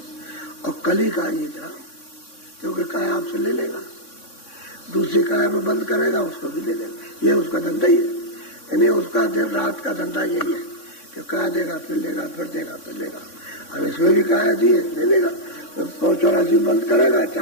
और कली का ये ग्राम, क्योंकि काय आपसे ले लेगा, दूसरी काय में बंद करेगा, उसको भी ले लेगा। ये उसका धंधा ही है, यानी उसका दिन रात का धंधा यही है कि काय देगा फिर लेगा, फिर देगा फिर लेगा। अब इसमें भी काय दिए ले लेगा, तो 184 बंद करेगा,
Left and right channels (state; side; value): late; right; 3.6 ms